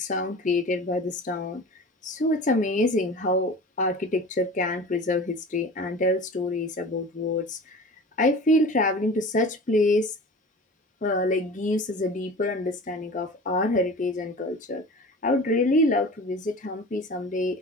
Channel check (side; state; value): both; normal; correlation 0.37